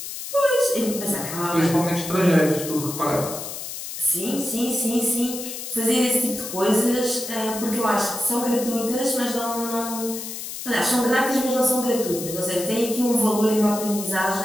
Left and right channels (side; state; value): left; noise; hiss, 8 dB below the sound